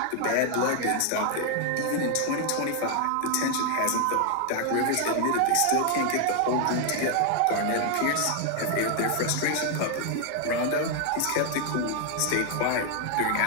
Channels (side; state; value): both; different; correlation 0.00